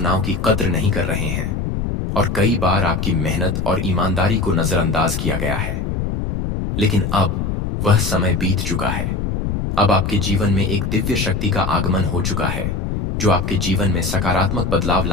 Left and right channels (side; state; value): left; noise; rumble, 2 dB below the sound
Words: की कद्र नहीं कर रहे हैं और कई बार आपकी मेहनत और ईमानदारी को नजरअंदाज किया गया है। लेकिन अब वह समय बीत चुका है। अब आपके जीवन में एक दिव्य शक्ति का आगमन हो चुका है जो आपके जीवन में सकारात्मक बदलाव